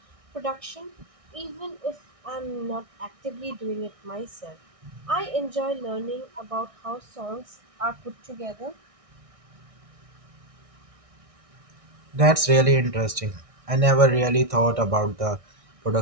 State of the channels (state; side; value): late; left; 1.6 ms